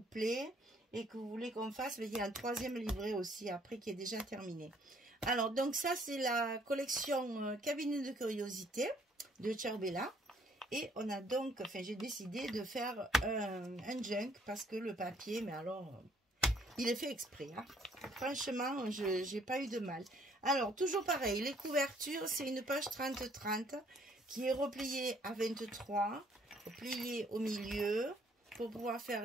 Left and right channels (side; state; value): both; normal; correlation 0.63